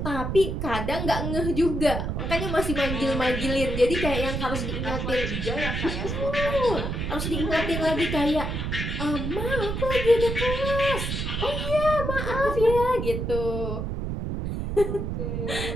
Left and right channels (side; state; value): right; noise; rumble, 3 dB below the sound